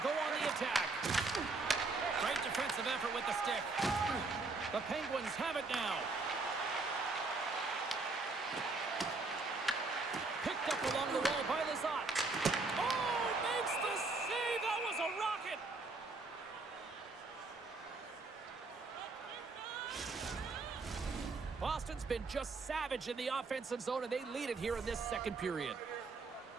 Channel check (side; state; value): left; quieter; 3.7 dB